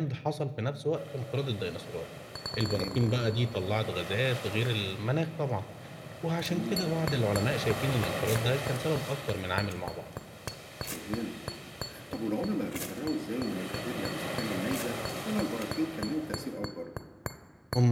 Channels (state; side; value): identical; both; correlation 1.00